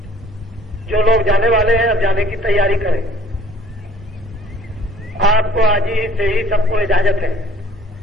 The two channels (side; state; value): both; normal; correlation 0.54